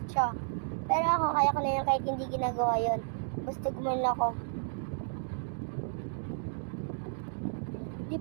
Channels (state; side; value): silent; left; digital silence